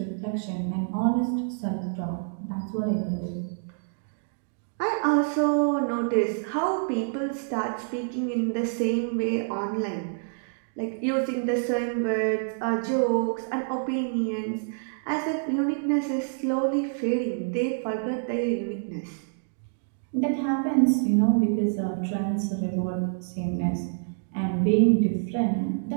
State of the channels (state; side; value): silent; left; digital silence